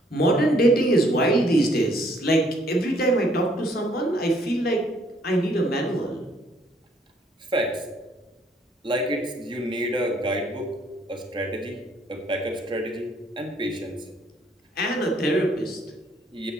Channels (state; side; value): normal; both; correlation 0.66